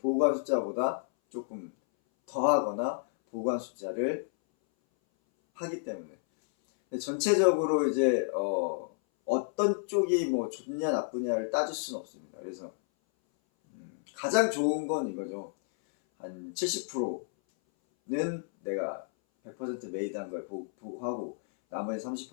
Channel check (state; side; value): silent; right; 57 dB below the other